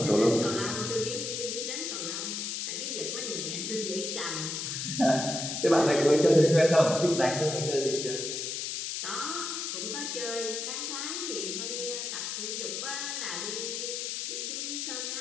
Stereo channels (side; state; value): left; noise; hiss, 3 dB below the sound